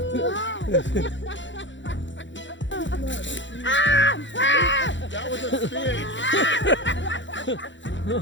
That was a spin.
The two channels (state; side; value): late; right; 0.54 ms